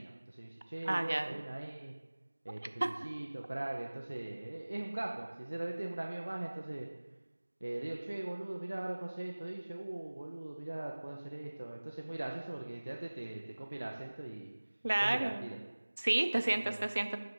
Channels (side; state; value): both; inverted; correlation -1.00